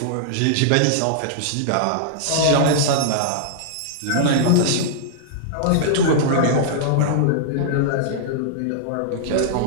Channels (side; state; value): both; different; correlation -0.02